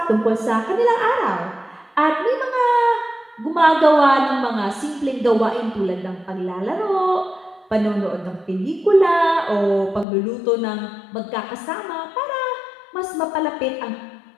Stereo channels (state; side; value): drops out; right; at 10.1 s